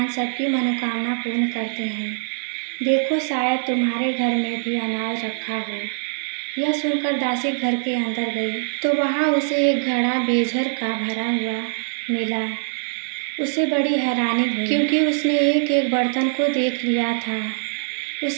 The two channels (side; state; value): left; silent; digital silence